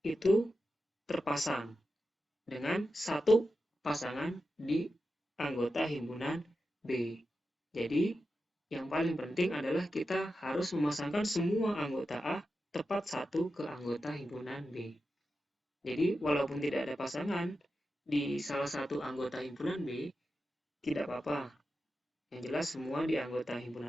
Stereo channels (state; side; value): normal; both; correlation 0.90